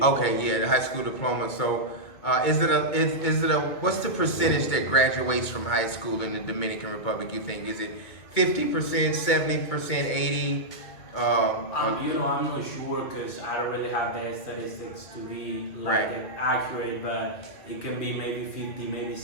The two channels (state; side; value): late; right; 2.2 ms